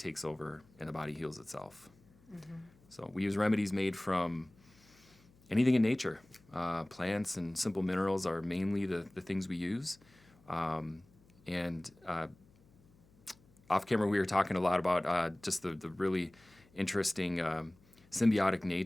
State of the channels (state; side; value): noise; left; hum, 29 dB below the sound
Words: over and the body heals itself. Mm-hmm. So we use remedies made from anything in nature. Plants and simple minerals are mainly the things we use. Off camera, we were talking a lot about just the really interesting symbiotic